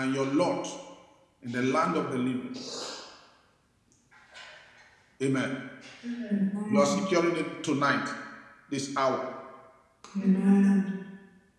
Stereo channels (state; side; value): identical; both; correlation 1.00